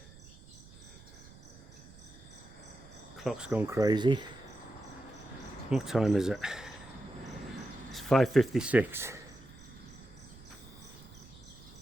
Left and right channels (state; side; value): noise; right; rumble, 20 dB below the sound